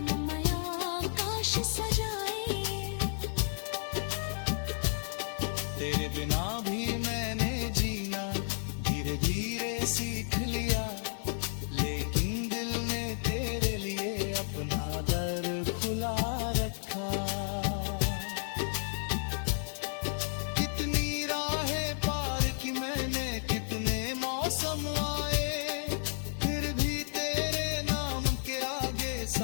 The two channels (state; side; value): silent; right; 56 dB below the other